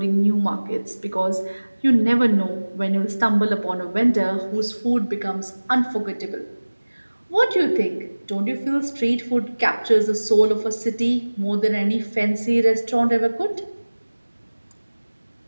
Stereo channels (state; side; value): inverted; both; correlation -1.00